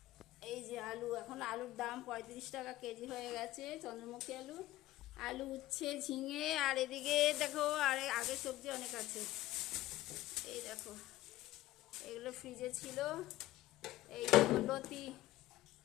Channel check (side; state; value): right; quieter; 16.0 dB